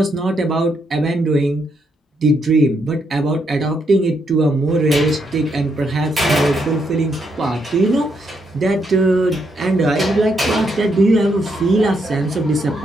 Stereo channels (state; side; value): normal; both; correlation 0.77